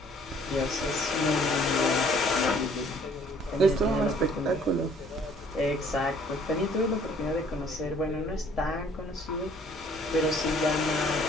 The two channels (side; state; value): both; normal; correlation 0.58